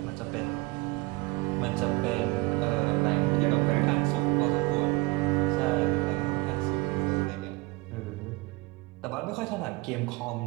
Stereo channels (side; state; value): left; quieter; 24.0 dB